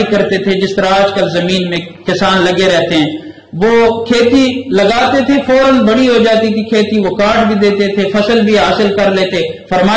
کرتے تھے، جس طرح آج کل زمین میں کسان لگے رہتے ہیں۔ وہ کھیتی لگاتے تھے، فوراً بڑی ہو جاتی تھی کھیتی، وہ کاٹ بھی دیتے تھے، فصل بھی حاصل کر لیتے۔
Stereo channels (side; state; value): both; identical; correlation 1.00